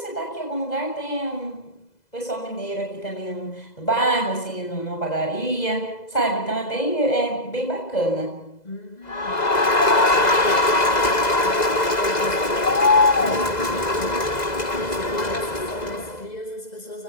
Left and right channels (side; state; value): right; late; 2.0 ms